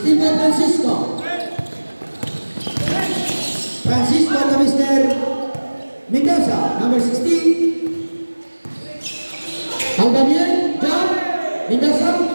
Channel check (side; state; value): both; inverted; correlation -1.00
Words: by Francisco. Francisco to Mr. Mendoza, number 16. Albanian, jump. Mendoza.